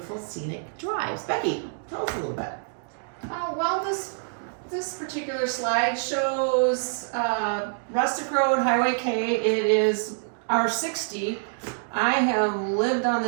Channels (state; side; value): silent; left; digital silence